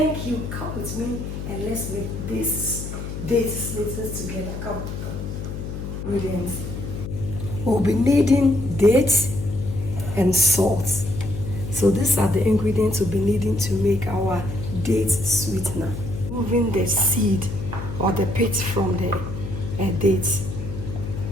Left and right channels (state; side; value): noise; left; hum, 7 dB below the sound